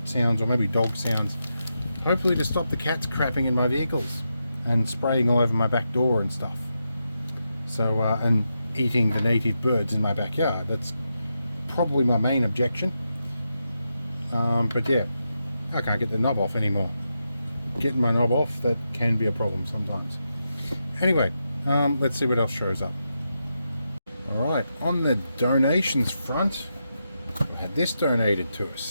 sounds, or maybe dog sounds, hopefully to stop the cats crapping in my vehicles and spraying all over my back door and stuff. So and eating the native birds in my backyard. That's probably my main objection. But yeah, I can't get the knob off anymore. getting my knob off, that can be a problem sometimes. Anyway, let's see what else shows up. Alright, on the donations front, we had this donated to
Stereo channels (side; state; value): both; inverted; correlation -0.86